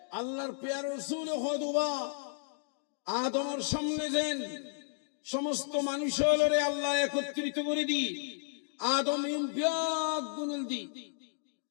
আল্লাহর পেয়ারা রাসূল খুতবা আদমের সামনে দেন, সমস্ত মানুষ হলরে আল্লাহ একত্রিত করে দি, আদম ব্যাগ গুনল দি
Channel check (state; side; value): silent; right; digital silence